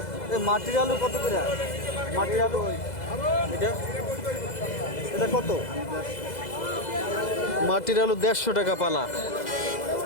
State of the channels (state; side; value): late; right; 2.0 ms